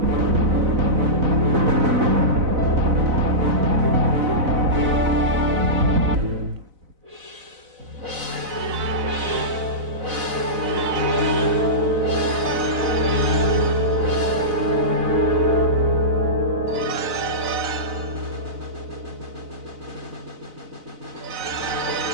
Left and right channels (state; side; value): late; left; 4.0 ms